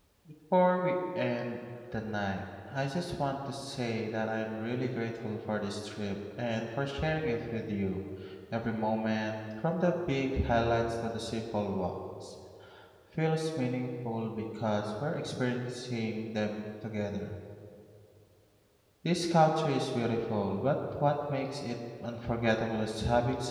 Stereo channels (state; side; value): identical; both; correlation 1.00